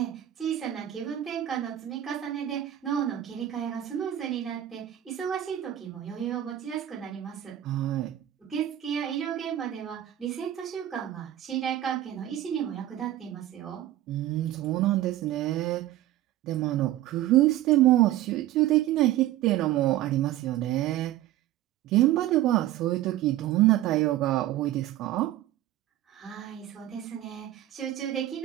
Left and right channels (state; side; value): quieter; left; 13.4 dB